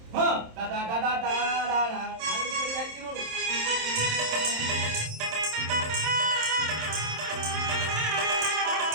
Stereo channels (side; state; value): left; late; 27 ms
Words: हाँ टा टा टा टा टा टा टा आगे बढ़ी है कि नोड़